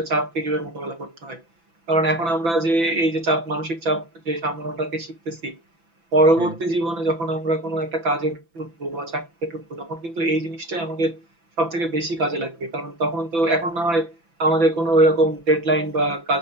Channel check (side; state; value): left; late; 6.0 ms